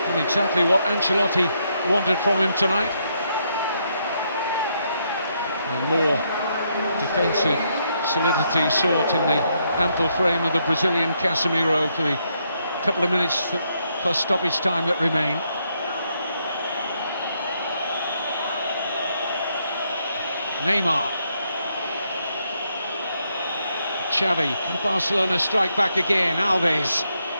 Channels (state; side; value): inverted; both; correlation -0.76